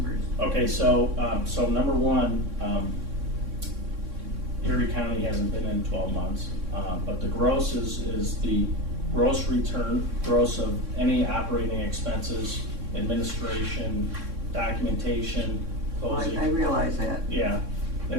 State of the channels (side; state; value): left; late; 3.6 ms